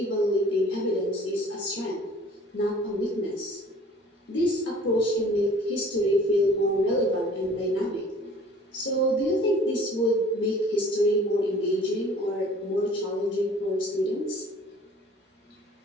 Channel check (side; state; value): both; normal; correlation 0.50